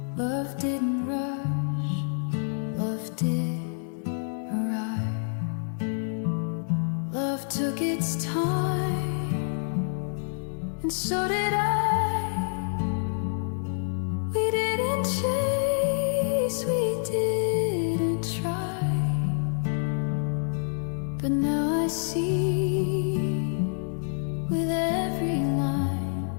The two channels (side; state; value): right; silent; digital silence